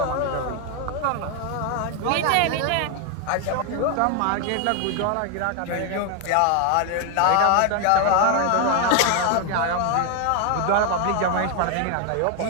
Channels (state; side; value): different; both; correlation 0.01